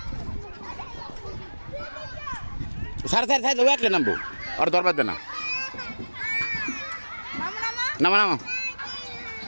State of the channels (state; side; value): inverted; both; correlation -1.00